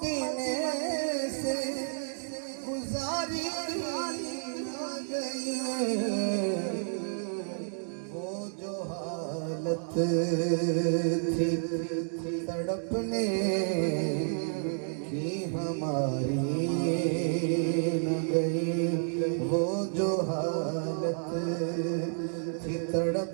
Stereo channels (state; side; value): silent; left; digital silence